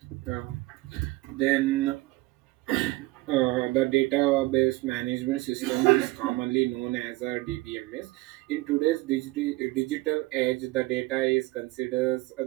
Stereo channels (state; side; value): quieter; left; 20.3 dB